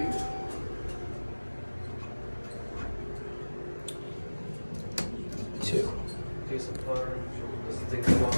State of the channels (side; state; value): both; inverted; correlation -1.00